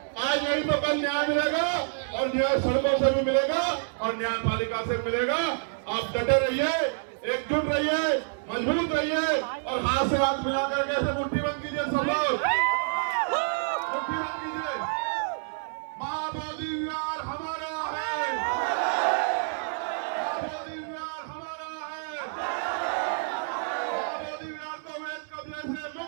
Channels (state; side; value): silent; left; 59 dB below the other